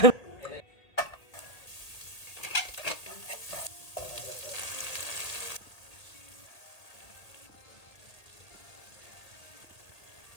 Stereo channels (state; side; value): late; right; 1.8 ms